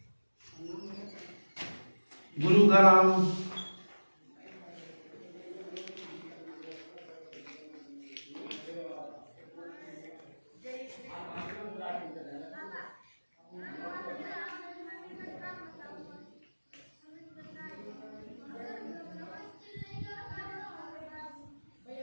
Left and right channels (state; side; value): inverted; both; correlation -1.00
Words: गुरु का नाम